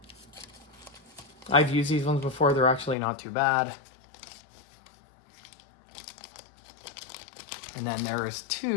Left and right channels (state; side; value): drops out; right; at 3.0 s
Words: I've used these ones before. They're actually not too bad. And then there is